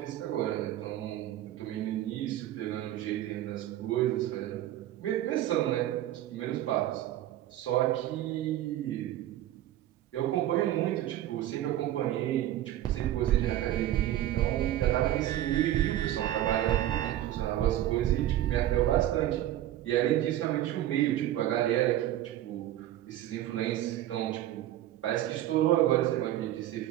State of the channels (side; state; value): left; quieter; 13.3 dB